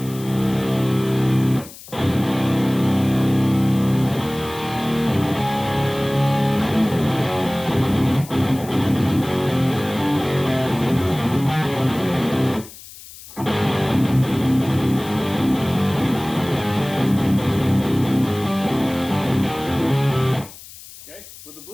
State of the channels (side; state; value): left; noise; hiss, 17 dB below the sound